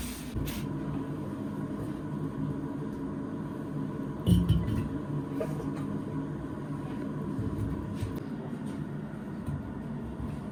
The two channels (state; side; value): identical; both; correlation 1.00